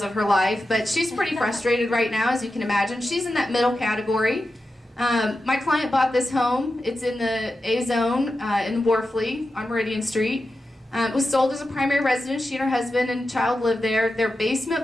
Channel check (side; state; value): both; normal; correlation 0.91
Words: of her life, but she's pretty frustrated right now, as you can imagine. She's in that middle category. My client bought this home. It's in the A zone in Worfley on Meridian Street. It was sold as a primary residence. She and her husband and child lived there. Their